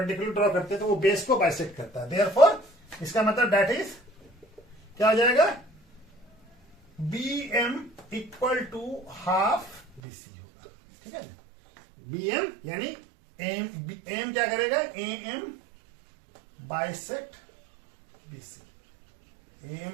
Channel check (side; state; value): left; drops out; at 10.0 s